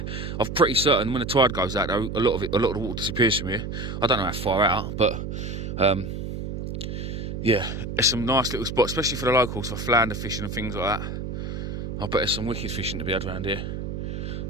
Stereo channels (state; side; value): noise; right; hum, 5 dB below the sound